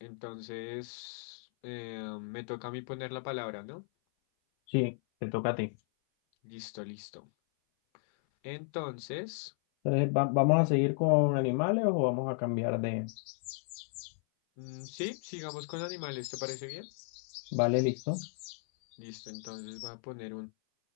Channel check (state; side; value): silent; right; 55 dB below the other